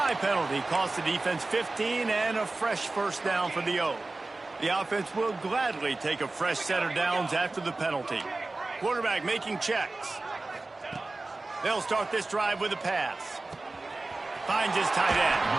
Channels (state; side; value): quieter; left; 3.2 dB